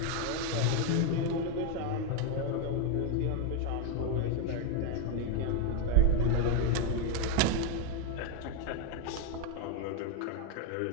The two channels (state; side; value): different; both; correlation 0.00